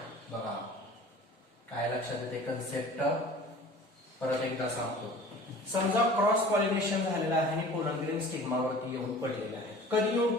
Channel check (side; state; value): both; normal; correlation 0.43